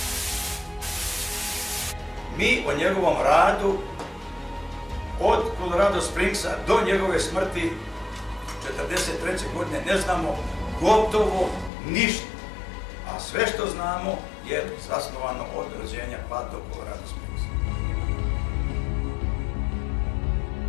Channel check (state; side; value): drops out; right; at 11.7 s